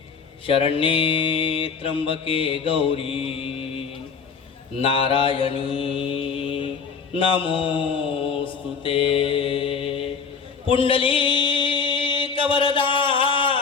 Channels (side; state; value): right; quieter; 5.6 dB